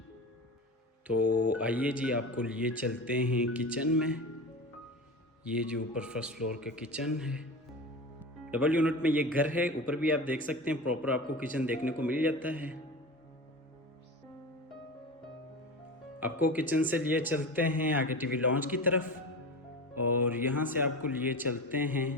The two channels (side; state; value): both; normal; correlation 0.29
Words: तो आइए जी आपको लिए चलते हैं किचन में। ये जो ऊपर फर्स्ट फ्लोर का किचन है, डबल यूनिट में ये घर है। ऊपर भी आप देख सकते हैं प्रॉपर आपको किचन देखने को मिल जाता है। आपको किचन से लिए चलते हैं आगे टीवी लॉन्च की तरफ, और यहाँ से आपको लिए चलते हैं